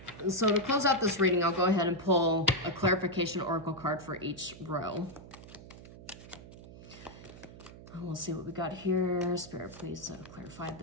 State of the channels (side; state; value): right; noise; hum, 17 dB below the sound